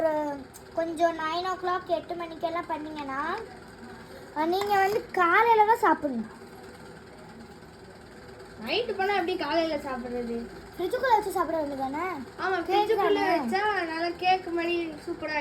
கொஞ்சம் 9 o'clock 8 மணிக்கெல்லாம் பண்ணிங்கன்னா நீங்கள் வந்து காலையில் தான் சாப்பிடணும். நைட்டு பண்ணால் எப்படி காலையில் சாப்பிட்றது? ஃப்ரிட்ஜுக்குள்ளே வச்சு சாப்பிட வேண்டியது தானே? ஆமாம், ஃப்ரிட்ஜுக்குள்ளே வச்சா நல்லா கேக் மாதிரி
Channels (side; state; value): both; identical; correlation 1.00